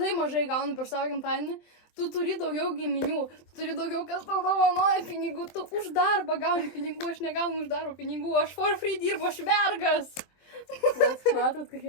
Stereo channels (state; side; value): late; right; 23 ms